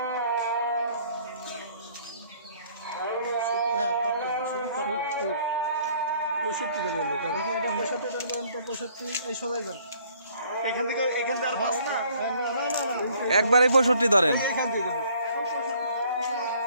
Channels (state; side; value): inverted; both; correlation -0.59